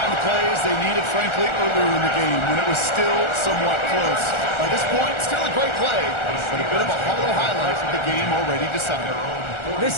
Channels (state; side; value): late; right; 1.4 ms